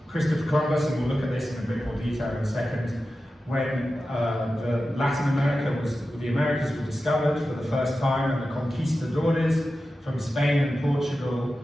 Christopher Columbus, and we'll look at this in a bit more detail in a second, when the Americas were discovered for the first time, and the conquistadores from Spain and Portugal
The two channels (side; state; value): both; normal; correlation 0.93